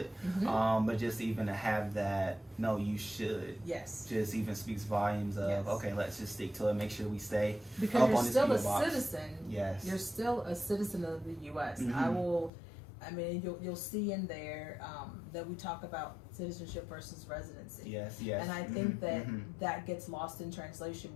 but just even to have that, no, you should. Yes. Just even speaks volumes of, okay, let's just stick to it. Make sure we stay because up you're on this still a box. citizen. Yes. You're still a citizen of the U.S. I mean, you'll see in there that we talk about citizenship versus residency. Yes. And I think that gets lost in translation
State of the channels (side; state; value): right; drops out; at 12.5 s